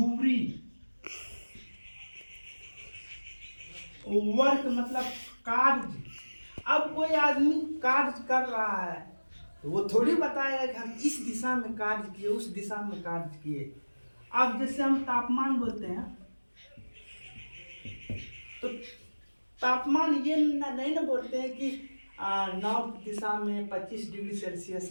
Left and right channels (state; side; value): inverted; both; correlation -1.00